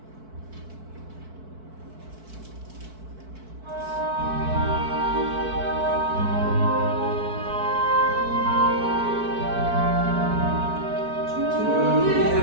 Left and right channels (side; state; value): left; late; 4.6 ms